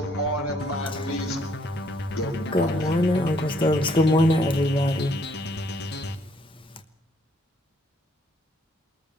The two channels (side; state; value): both; normal; correlation 0.68